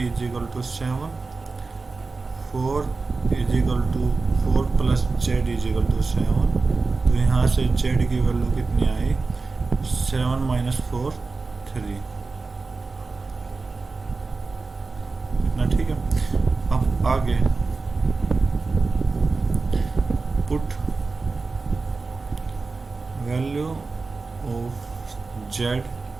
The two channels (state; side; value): quieter; left; 3.9 dB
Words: is equal to 7, 4 is equal to 4 plus z is equal to 7। तो यहाँ से जेड की वैल्यू कितनी आई, 7 माइनस 4 3 इतना। ठीक है, अब आगे put value of z